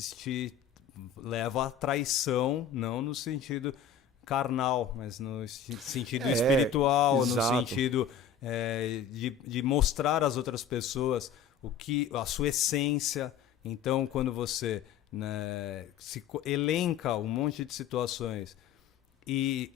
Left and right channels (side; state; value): right; quieter; 7.3 dB